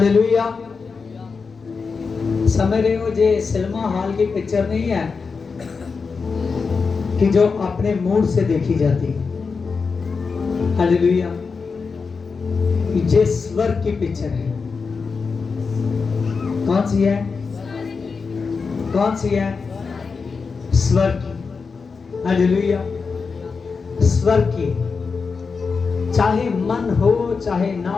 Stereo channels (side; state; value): right; quieter; 5.0 dB